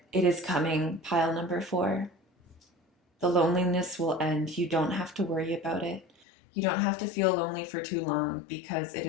it is coming, pile number 4. The loneliness will end. You don't have to worry about it. You don't have to feel lonely for too long because it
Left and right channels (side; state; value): right; drops out; at 6.2 s